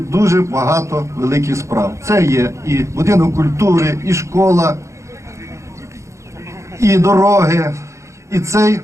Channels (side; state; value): left; late; 0.14 ms